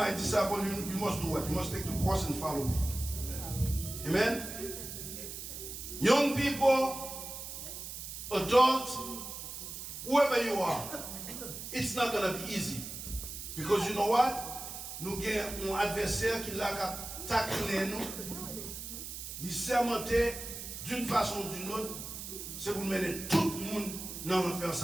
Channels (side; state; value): right; noise; hiss, 8 dB below the sound